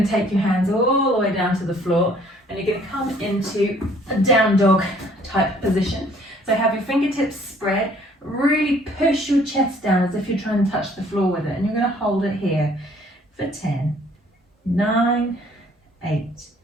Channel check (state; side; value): normal; both; correlation 0.59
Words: to take your hands all the way down to the floor and you're going to come into a down dog type position. So have your fingertips spread, really push your chest down as if you're trying to touch the floor with it, and you're going to hold it here for 10, 9, 8,